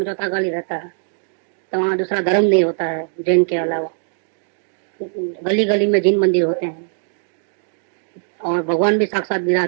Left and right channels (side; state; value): left; silent; digital silence